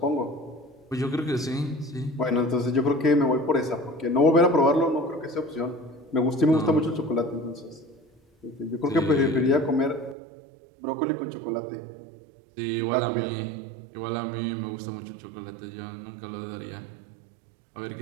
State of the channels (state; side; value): drops out; left; at 10.2 s